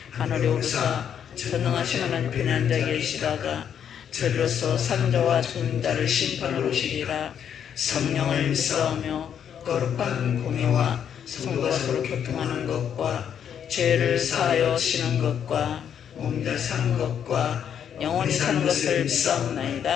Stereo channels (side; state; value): right; quieter; 8.6 dB